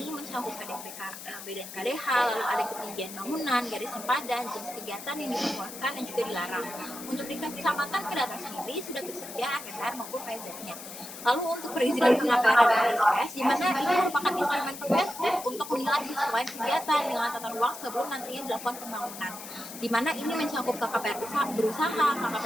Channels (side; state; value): left; noise; hiss, 12 dB below the sound